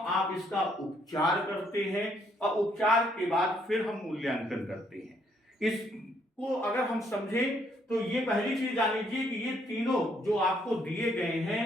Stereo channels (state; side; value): normal; both; correlation 0.70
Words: आप इसका उपचार करते हैं और उपचार के बाद फिर हम मूल्यांकन करते हैं। इसको अगर हम समझें तो ये पहली चीज जान लीजिए कि ये तीनों जो आपको दिए गए